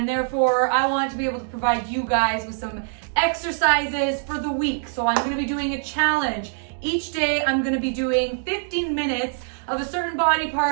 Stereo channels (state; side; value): silent; left; digital silence